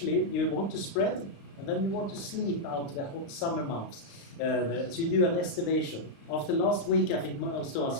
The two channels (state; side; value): late; right; 36 ms